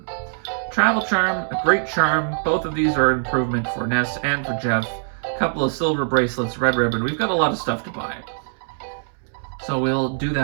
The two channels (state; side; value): silent; left; 64 dB below the other